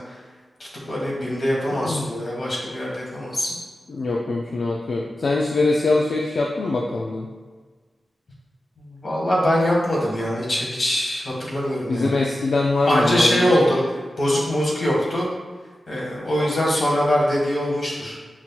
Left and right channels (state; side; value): normal; both; correlation 0.92